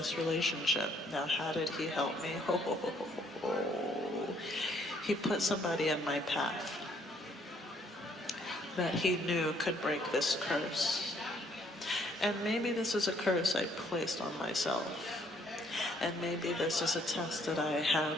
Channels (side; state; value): both; normal; correlation 0.66